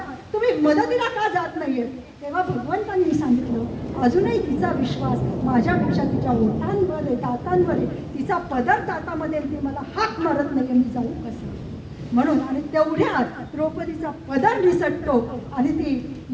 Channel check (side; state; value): both; identical; correlation 1.00